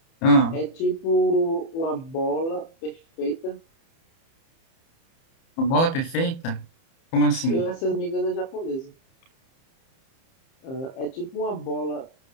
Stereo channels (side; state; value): right; late; 30 ms